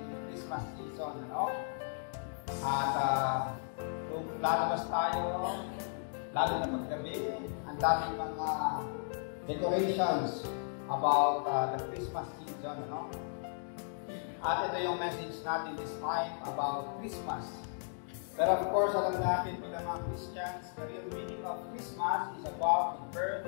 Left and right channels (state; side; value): silent; right; digital silence